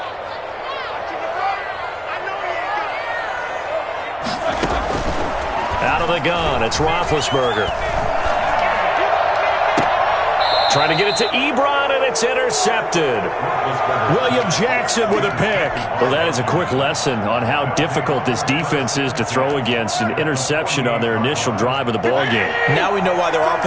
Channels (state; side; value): identical; both; correlation 1.00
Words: Out of the gun, it's Roethlisberger. Trying to get it to Ebron, and it's intercepted. William Jackson with a pick. Well, that is a quick lesson on how difficult this defense is to throw against. An interception on their initial drive of the ballgame. Now we know why their